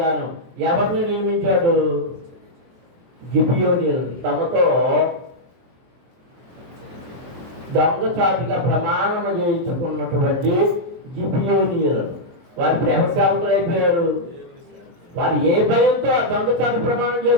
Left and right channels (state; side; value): late; left; 23 ms